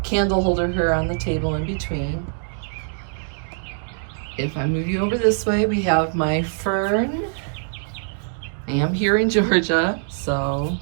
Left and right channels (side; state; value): left; silent; digital silence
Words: candle holder here on the table in between. If I move you over this way, we have my fern. I am here in Georgia, so